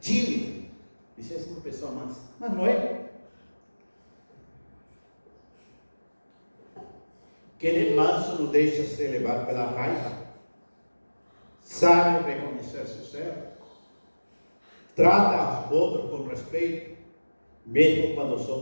tímido. Isso é uma pessoa mansa, mas não é. Quem é manso não deixa se levar pela raiva, sabe reconhecer seus erros, trata os outros com respeito, mesmo quando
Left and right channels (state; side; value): inverted; both; correlation -1.00